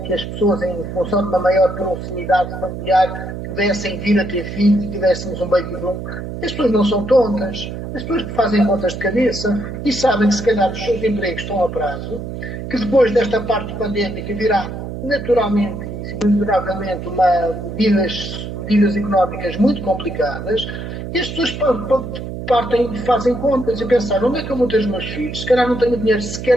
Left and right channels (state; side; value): noise; right; hum, 7 dB below the sound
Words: as pessoas, em função de uma maior proximidade familiar, pudessem vir a ter filhos e tivéssemos um baby boom. As pessoas não são tontas. As pessoas que fazem contas de cabeça e sabem que se calhar os seus empregos estão a prazo, que depois desta parte pandémica virá naturalmente e induravelmente medidas económicas muito complicadas, e as pessoas fazem contas e pensam: onde é que eu vou ter os meus filhos? Se calhar não tenho dinheiro